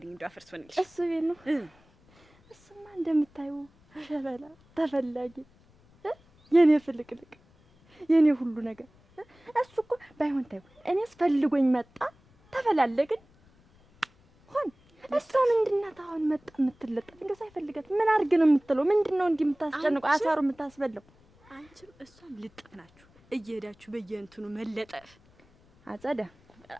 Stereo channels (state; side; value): noise; left; rumble, 30 dB below the sound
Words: እንደው አፈርስ ሆነልሽ። እሱ ቤት ነው። እሱማ እንደምታዩ ሸበላ ተፈላጊ፣ የኔ ፍልቅልቅ፣ የኔ ሁሉ ነገር። እሱ እኮ ባይሆን ታዩ እኔስ ፈልጎኝ መጣ፣ ተፈላለግን፣ እሷ ምንድን ናት አሁን መጣ የምትለጠፍ? እንደው ሳይፈልጋት ምን አድርግ ነው የምትለው? ምንድን ነው እንዲህ የምታስጨንቀው? አሳሩ የምታስበላው? አንቺም እሷም ልጥፍ ናችሁ እየሄዳችሁ በየእንትኑ መለጠፍ። አጸዳ